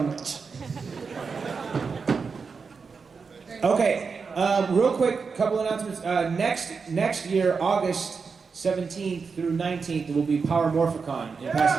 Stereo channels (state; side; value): quieter; left; 5.2 dB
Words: Okay, real quick, couple announcements. Next year, August 17th through 19th, there will be Power Morphicon in